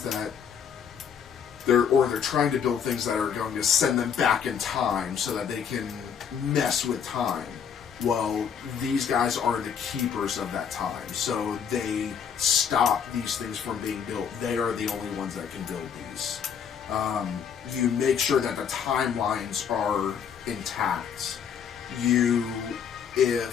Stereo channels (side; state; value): right; quieter; 7.5 dB